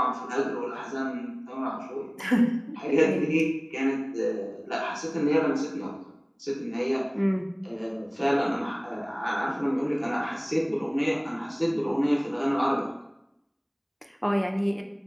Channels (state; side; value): identical; both; correlation 1.00